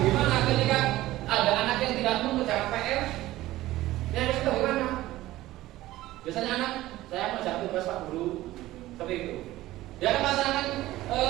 ketika ada anak yang tidak mengerjakan PR? Ya harus tahu bagaimana. Biasanya anak saya mengerjakan tugas Pak Guru seperti itu. Dia akan melaksanakan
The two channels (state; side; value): quieter; left; 16.2 dB